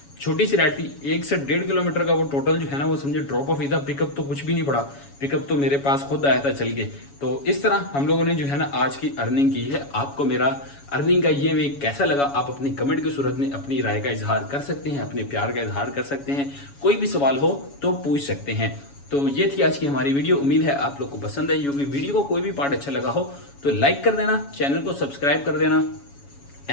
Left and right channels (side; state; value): right; late; 7.1 ms